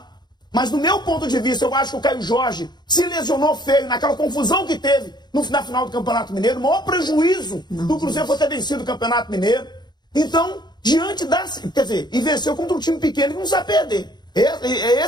Mas do meu ponto de vista, eu acho que o Caio Jorge se lesionou feio naquela confusão que teve na final do Campeonato Mineiro. O maior prejuízo do Cruzeiro foi ter vencido o Campeonato Mineiro. Então, e venceu contra um time pequeno que não sabe perder.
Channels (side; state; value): right; late; 0.21 ms